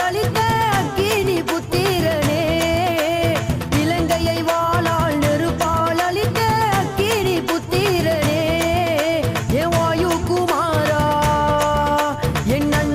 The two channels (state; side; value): identical; both; correlation 1.00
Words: அளித்த அக்கினி புத்திரனே இலங்கையை வாளால் நெருப்பால் அளித்த அக்கினி புத்திரனே ஏ வாயு குமாரா என்